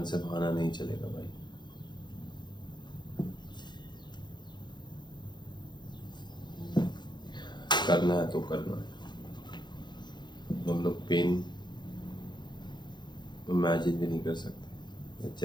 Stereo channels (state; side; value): late; right; 0.21 ms